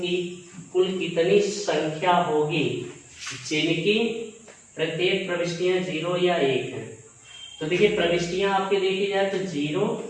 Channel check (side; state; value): both; identical; correlation 1.00